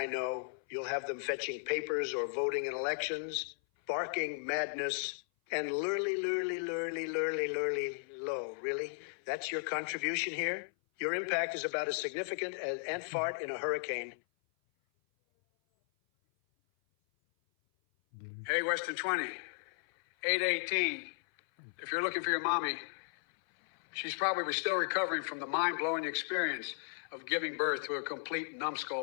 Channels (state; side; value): silent; right; 54 dB below the other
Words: know, you'll have them fetching papers or voting in elections, barking madness, and lurly low. Really? That's your contribution here? Your impact is about as significant as ant fart in a hurricane. Hey, Western 20, 818. If you're looking for your mommy, she's probably still recovering from the mind-blowing experience of giving birth to a complete